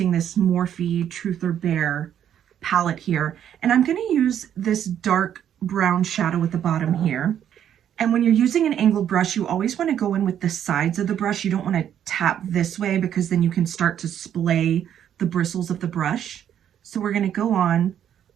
this Morphe Truth or Bare palette here. And I'm going to use this dark brown shadow at the bottom here. And when you're using an angled brush, you always want to go in with the sides of the brush. You don't want to tap this way because then you can start to splay the bristles of the brush. So we're going to go on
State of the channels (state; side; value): quieter; left; 9.8 dB